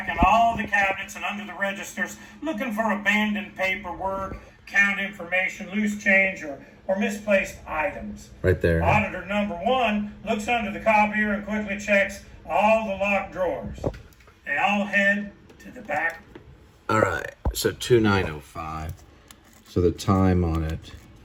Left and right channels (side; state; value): both; identical; correlation 1.00